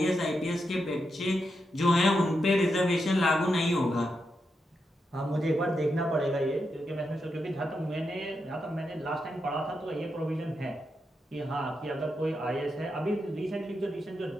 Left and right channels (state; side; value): normal; both; correlation 0.85